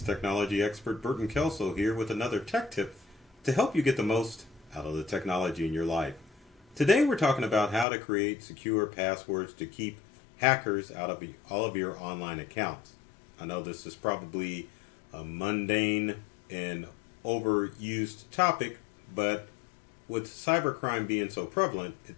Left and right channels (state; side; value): drops out; right; at 7.9 s